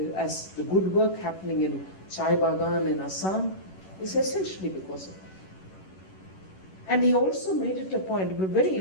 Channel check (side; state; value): right; late; 11 ms